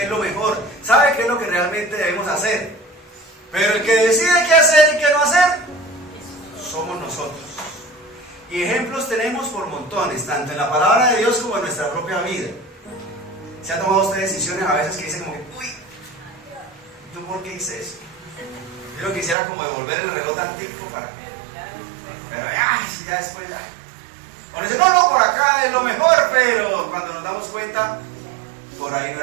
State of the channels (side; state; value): left; drops out; at 19.4 s